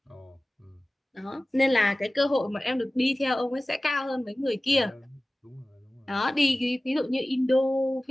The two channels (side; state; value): both; normal; correlation 0.97